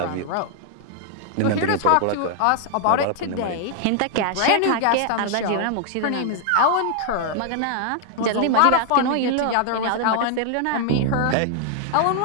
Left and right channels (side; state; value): both; different; correlation 0.00